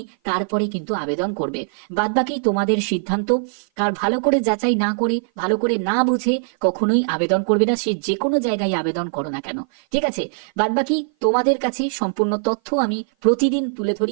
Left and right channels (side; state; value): left; silent; 56 dB below the other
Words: তারপরে কিন্তু আবেদন করবে, বাদ বাকি তোমাদের সিদ্ধান্ত। কারণ ভালো করে যাচাই না করে, ভালো করে না বুঝে কখনোই আবেদন করবে না, সে যে কোনো জায়গায় আবেদন করো না কেন, ঠিক ঠিক আছে, বাদবাকি তোমাদের কাছে সম্পূর্ণ তথ্য আমি প্রতিদিন তুলে